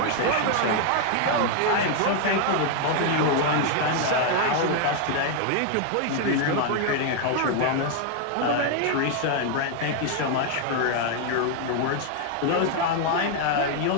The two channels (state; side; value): different; both; correlation 0.00